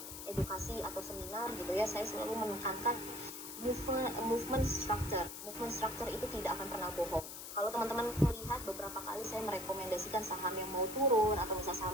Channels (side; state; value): left; noise; hiss, 9 dB below the sound